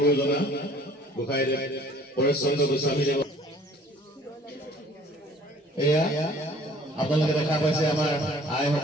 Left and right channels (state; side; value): normal; both; correlation 0.54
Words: গোসাঁইদেৱ পৰেশ চন্দ্ৰ গোস্বামী দেৱ এয়া আপোনালোকে দেখা পাইছে আমাৰ